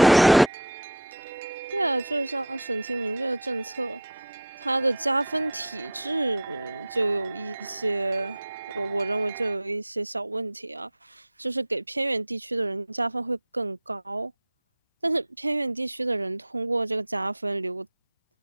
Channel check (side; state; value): both; normal; correlation -0.12